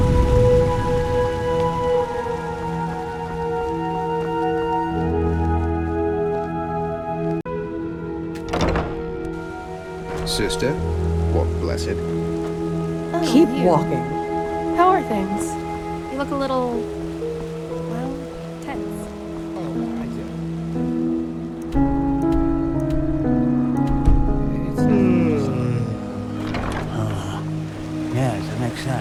Sister, walk blessed. Keep walking. How are things? You look a little, well, tense. Yes, that makes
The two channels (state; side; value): identical; both; correlation 1.00